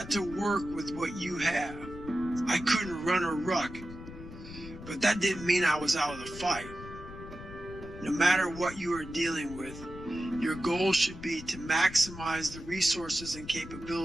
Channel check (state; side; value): noise; left; rumble, 13 dB below the sound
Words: to work with what you have. I couldn't run a ruck, but that didn't mean I was out of the fight. No matter what you are dealing with, your goal should be to maximize the resources and